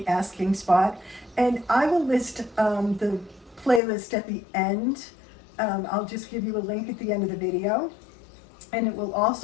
Asking Spot, and I will list the playlist at the end. I'll just give you a link at the end of the video, and it will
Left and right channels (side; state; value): right; drops out; at 3.8 s